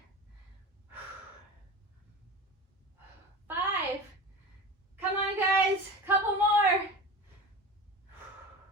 5, come on guys, couple more.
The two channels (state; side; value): normal; both; correlation 0.32